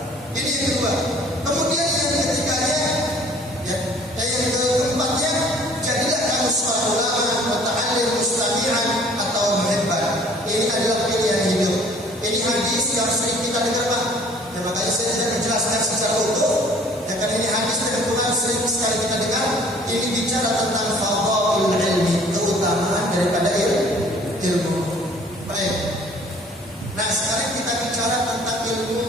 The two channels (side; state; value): both; normal; correlation 0.54